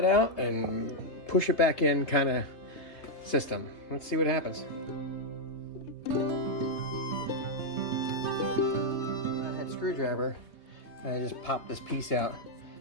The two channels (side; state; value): right; late; 3.2 ms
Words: out and push it back in kind of system. Let's see what happens. I had a screwdriver and I just popped this piece out.